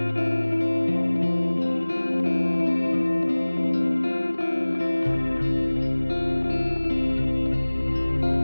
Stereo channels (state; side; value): inverted; both; correlation -1.00